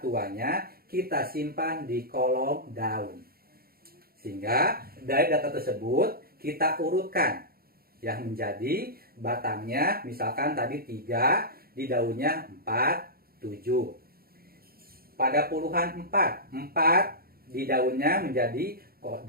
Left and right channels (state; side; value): late; left; 0.44 ms